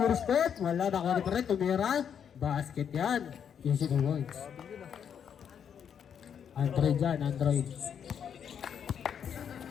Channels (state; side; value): quieter; right; 8.0 dB